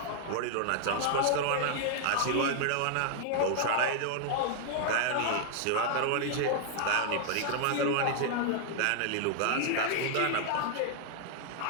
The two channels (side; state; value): both; different; correlation 0.00